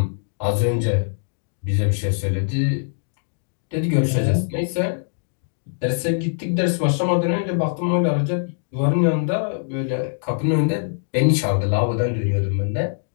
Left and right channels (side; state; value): right; silent; digital silence